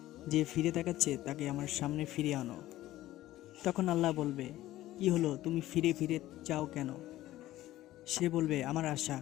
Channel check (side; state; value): right; quieter; 15.3 dB